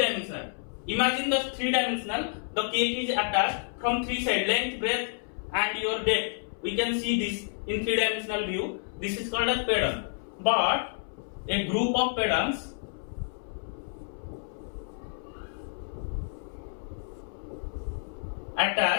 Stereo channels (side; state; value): right; silent; 58 dB below the other